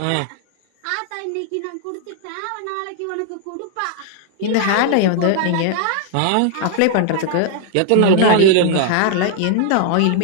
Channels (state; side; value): different; both; correlation 0.00